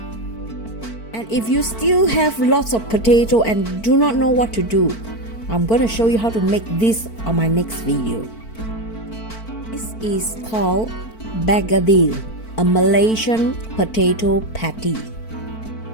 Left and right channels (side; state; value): right; late; 4.5 ms